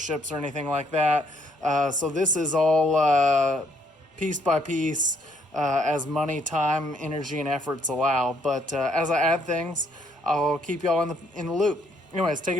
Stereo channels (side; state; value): both; normal; correlation 0.69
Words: or anything like that. So this is all piece by piece, as money, time, energy, and efforts allow. But as I add things, I'll keep y'all in the loop. Anyways, take